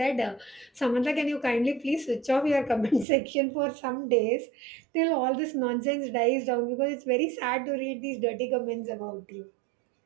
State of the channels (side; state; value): left; drops out; at 3.1 s